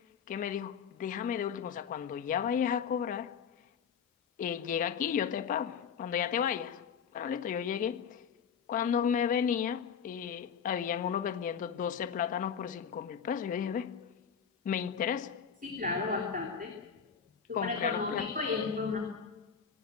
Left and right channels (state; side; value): quieter; right; 7.1 dB